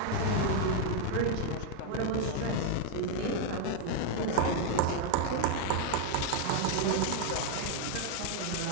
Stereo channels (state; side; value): different; both; correlation 0.00